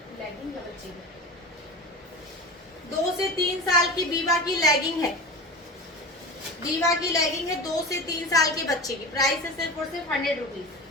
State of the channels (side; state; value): both; normal; correlation 0.30